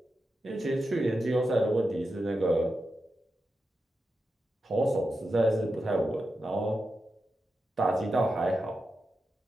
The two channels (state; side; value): normal; both; correlation 0.89